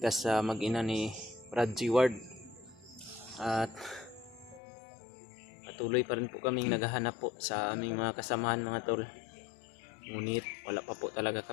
sa mag-ina ni Brad G. Ward. At patuloy pa rin po kaming naghahanap po sa aming mga kasamahan mga tol. Ngunit wala pa po talaga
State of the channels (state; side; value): drops out; right; at 4.6 s